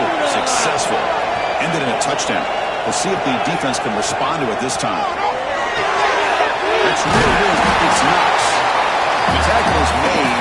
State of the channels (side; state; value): both; identical; correlation 1.00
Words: successful. Ended in a touchdown. We'll see if the defense can respond to it this time. That's really good. It's Knox. The tackle is